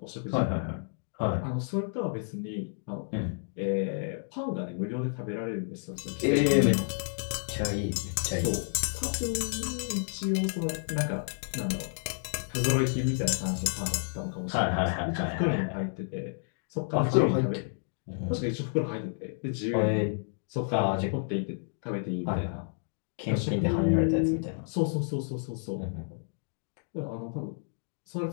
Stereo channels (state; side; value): silent; right; digital silence